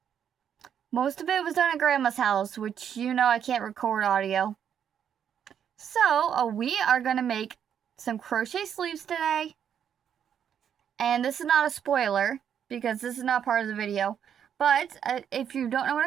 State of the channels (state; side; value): quieter; left; 8.6 dB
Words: Most of it was done at Grandma's house, which you know I can't record audio. So we are gonna make some crochet sleeves today. And this is not a spoiler because this is not part of the video. But if you don't know what